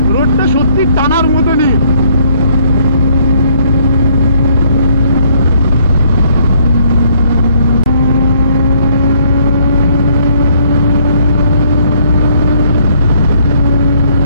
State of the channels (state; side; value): inverted; both; correlation -0.65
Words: রোডটা সত্যি টানার মতনই।